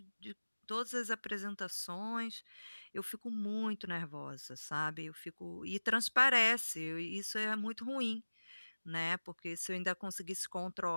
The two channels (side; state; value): both; inverted; correlation -1.00